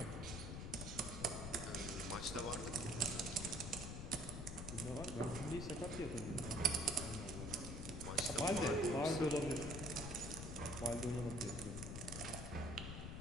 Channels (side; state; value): left; noise; rumble, 6 dB below the sound